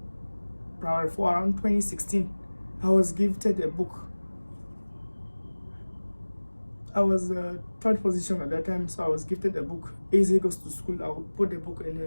primary 4, around 2016. I was gifted a book. I was third position at that time, so I was gifted a book. Eze Goes to School. I would put the book in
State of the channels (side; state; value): both; inverted; correlation -1.00